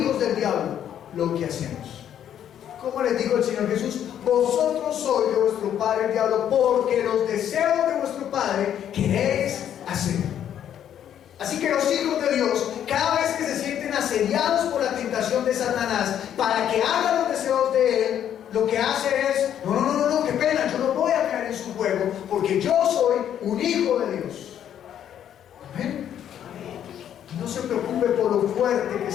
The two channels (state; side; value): quieter; right; 10.0 dB